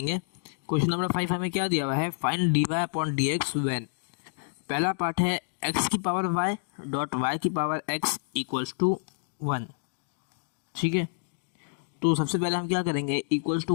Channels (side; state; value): right; silent; digital silence